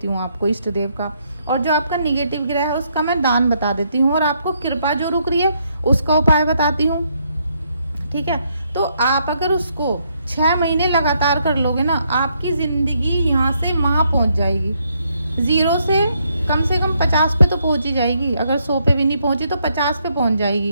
हूँ आपको इष्ट देव का, और जो आपका निगेटिव ग्रह है उसका मैं दान बता देती हूँ, और आपको कृपा जो रुक रही है उसका उपाय बताती हूँ, ठीक है। तो आप अगर उसको 6 महीने लगातार कर लोगे ना, आपकी जिंदगी यहाँ से वहाँ पहुँच जाएगी। 0 से कम 50 पे तो पहुँच ही जाएगी। अगर 100 पे भी नहीं पहुँची तो 50 पे पहुँच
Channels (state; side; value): inverted; both; correlation -0.74